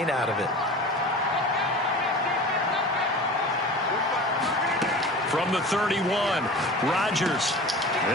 out of it. From the 31, Rodgers.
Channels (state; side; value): normal; both; correlation 0.36